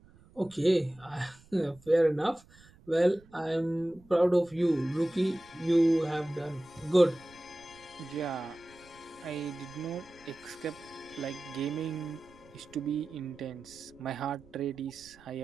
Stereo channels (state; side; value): noise; right; rumble, 26 dB below the sound